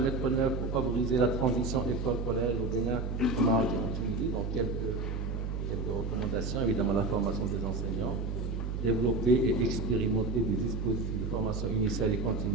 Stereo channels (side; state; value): right; noise; hum, 3 dB below the sound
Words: en œuvre pour favoriser la transition école-collège au Bénin, au Maroc et en Tunisie. Donc, quelques recommandations. Évidemment, la formation des enseignants. Développer et expérimenter des dispositifs de formation initiale et